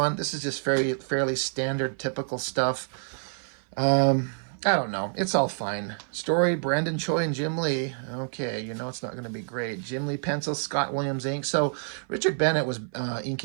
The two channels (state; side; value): silent; left; 55 dB below the other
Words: This is just fairly standard, typical stuff. I don't know. It's all fine. Story, Brandon Choi and Jim Lee. Okay, you know it's not going to be great. Jim Lee pencil, Scott Williams ink. So Richard Bennett was